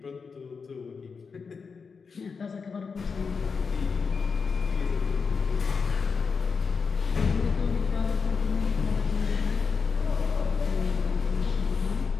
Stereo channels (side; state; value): right; quieter; 5.3 dB